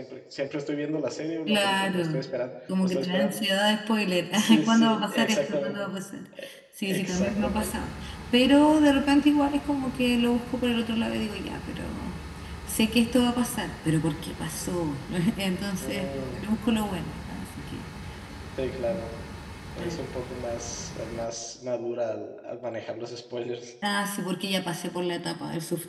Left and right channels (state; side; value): identical; both; correlation 1.00